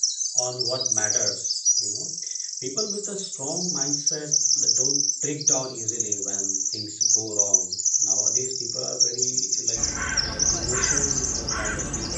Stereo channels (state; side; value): identical; both; correlation 1.00